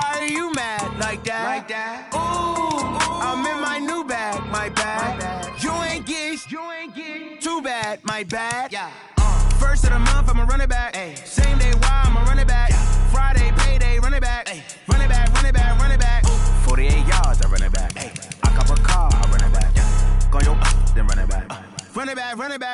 are you mad like that? Ooh, I'm in my new bag, my bad. You ain't get too bad, my bad. Yeah. First of the month, I'ma run it back. Ay. Same day, why I'ma run it back. Friday, payday, run it back. Ay. Run it back, run it back, run it back. 48 yards, I run it back. Ay. I cop a car, I run it back. Go yo, then run it back. Run it back, run it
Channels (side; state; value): both; identical; correlation 1.00